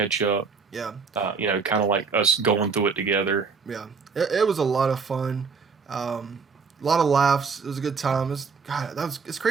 up. Yeah, Kind of like us going through it together. yeah. It was a lot of fun. A lot of laughs. It was a good time. It's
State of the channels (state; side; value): quieter; left; 5.2 dB